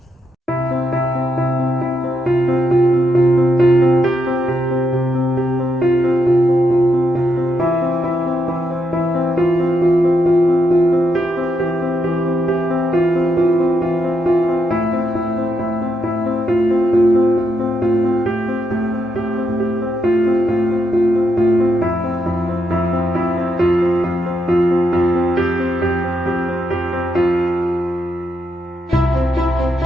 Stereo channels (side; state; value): both; normal; correlation 0.80